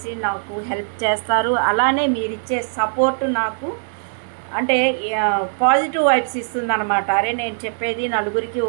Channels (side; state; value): left; silent; digital silence